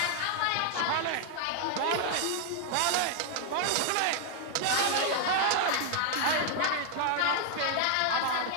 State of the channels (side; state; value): both; different; correlation 0.00